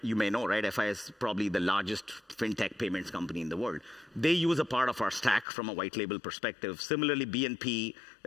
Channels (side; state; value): right; drops out; at 5.5 s